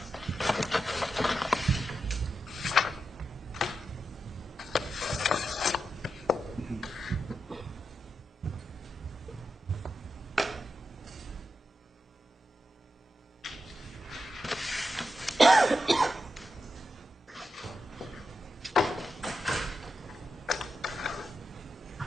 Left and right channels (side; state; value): both; normal; correlation 0.88